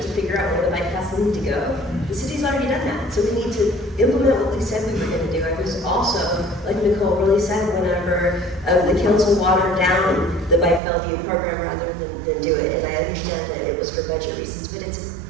to figure out where the bike paths need to go. The city's already done that, so we need to implement what we said we were going to do. I was also, like Nicole really said, whenever the council watered down the Bike Bellevue program rather than do it, and I understand that it was for budget reasons, but it's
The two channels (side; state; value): left; drops out; at 10.8 s